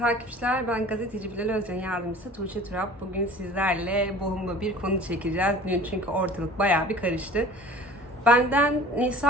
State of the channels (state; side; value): normal; both; correlation 0.45